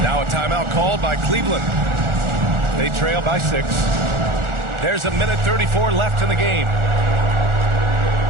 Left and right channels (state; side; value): late; left; 1.4 ms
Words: Now a timeout called by Cleveland. They trail by 6. There's a minute 34 left in the game.